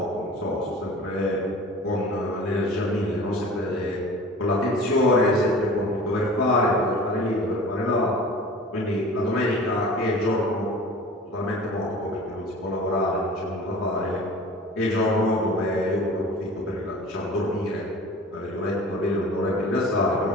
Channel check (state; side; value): normal; both; correlation 0.41